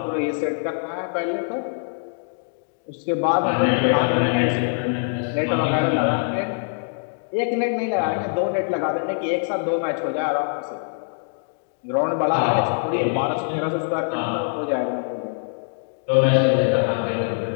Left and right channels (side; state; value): right; silent; digital silence